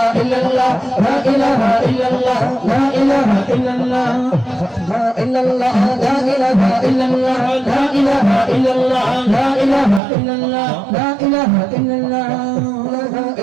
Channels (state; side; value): drops out; left; at 10.0 s